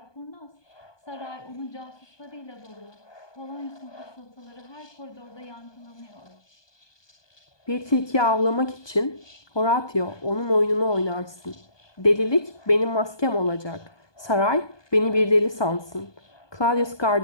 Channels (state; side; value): late; right; 1.2 ms